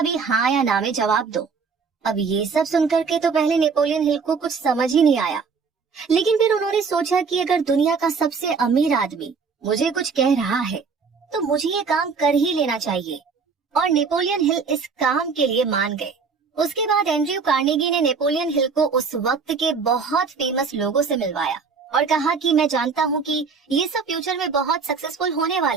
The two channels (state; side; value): quieter; left; 5.2 dB